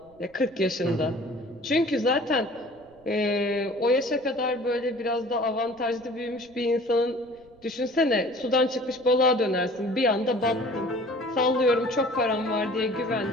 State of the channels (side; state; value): right; noise; rumble, 28 dB below the sound